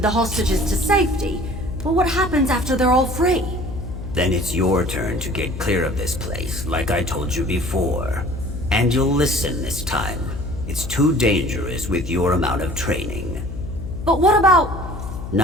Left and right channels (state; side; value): noise; left; hum, 8 dB below the sound